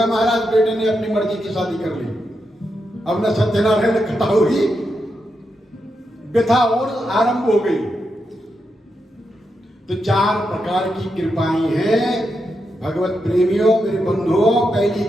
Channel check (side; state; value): both; normal; correlation 0.85